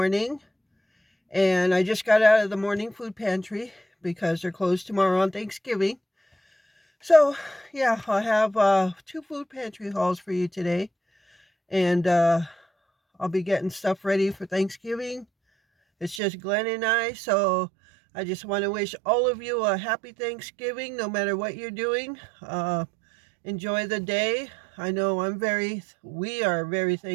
and I just got out of the morning food pantry because they're closed tomorrow on Thanksgiving. So yeah, I have two food pantry hauls for you today, and I'll be getting stuff ready for Thanksgiving. It's just Glenn and I, so I just want to wish all of you a happy Thanksgiving no matter what you're doing. Enjoy the day. I know we are very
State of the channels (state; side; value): drops out; left; at 16.2 s